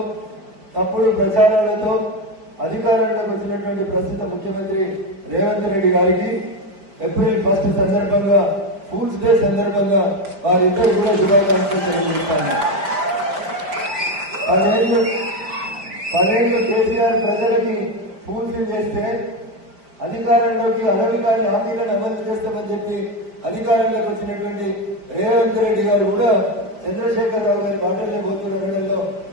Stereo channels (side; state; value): left; late; 5.0 ms